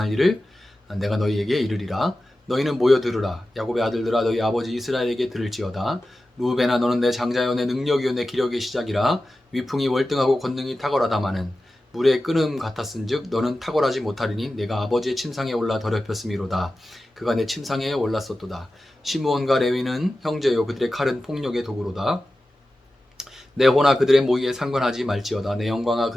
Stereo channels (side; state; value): both; normal; correlation 0.94